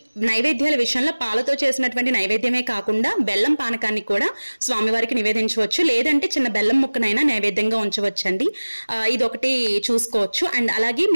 నైవేద్యాల విషయంలో పాలతో చేసినటువంటి నైవేద్యమే కాకుండా బెల్లం పానకాన్ని కూడా స్వామివారికి నివేదించవచ్చు. లేదంటే చిన్న బెల్లం ముక్కనైనా నైవేద్యంగా ఉంచవచ్చండి. ఇదొకటి చూసుకోవచ్చు. అండ్ అలాగే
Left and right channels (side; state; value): both; inverted; correlation -1.00